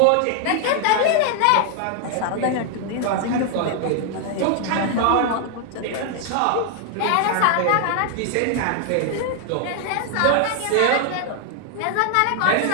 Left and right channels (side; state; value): both; different; correlation 0.00